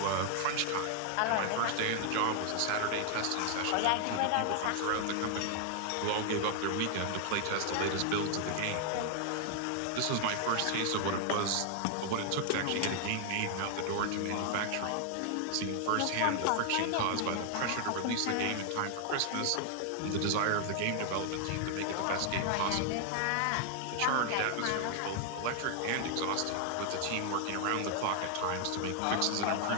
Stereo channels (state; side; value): different; both; correlation 0.00